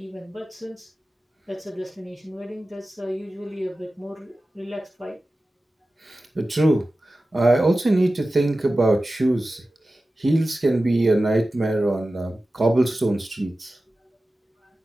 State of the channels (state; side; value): normal; both; correlation 0.95